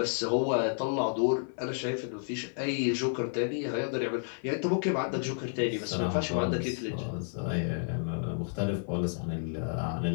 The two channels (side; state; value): right; silent; 57 dB below the other